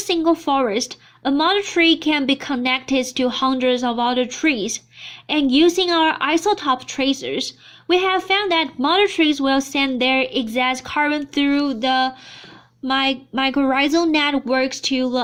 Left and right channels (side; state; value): both; identical; correlation 1.00